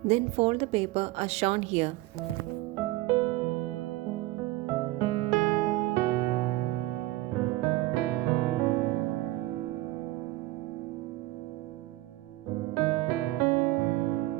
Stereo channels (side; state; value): left; quieter; 18.3 dB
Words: Then fold the paper as shown here.